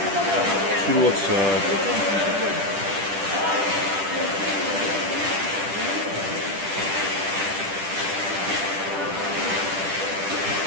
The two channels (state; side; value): late; left; 10 ms